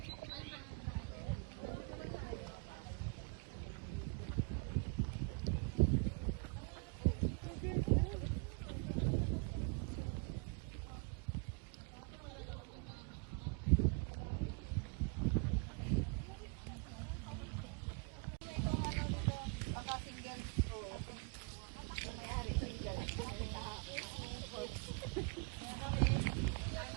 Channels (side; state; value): left; quieter; 33.7 dB